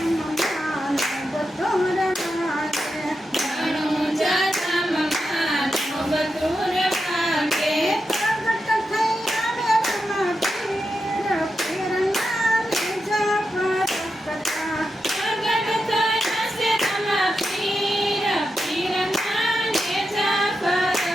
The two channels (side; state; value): both; normal; correlation 0.88